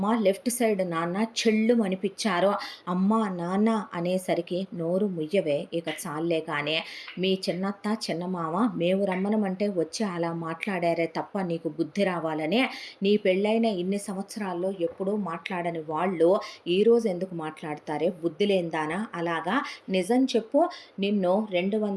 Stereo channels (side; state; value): both; identical; correlation 1.00